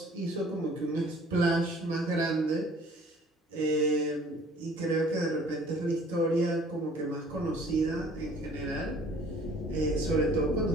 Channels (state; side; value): normal; both; correlation 0.53